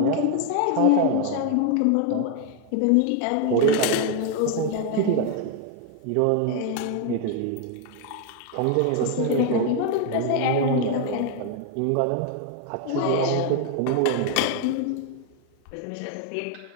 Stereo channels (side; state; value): both; different; correlation 0.01